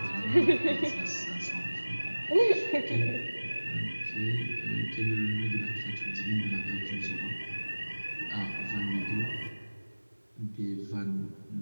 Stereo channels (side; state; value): both; inverted; correlation -1.00